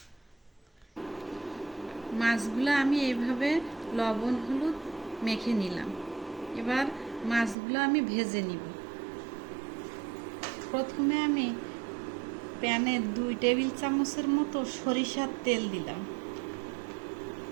মাছগুলো আমি এইভাবে লবণ হলুদ মেখে নিলাম। এবার মাছগুলো আমি ভেজে নিব। প্রথমে আমি প্যানে 2 টেবিল চামচের মতো সরিষার তেল দিলাম।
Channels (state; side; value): drops out; left; at 7.6 s